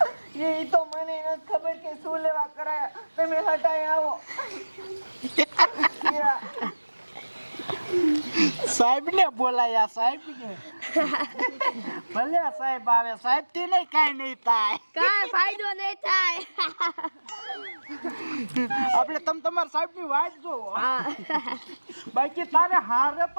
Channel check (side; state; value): both; inverted; correlation -1.00